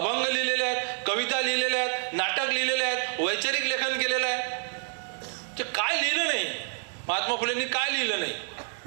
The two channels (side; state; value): left; silent; 59 dB below the other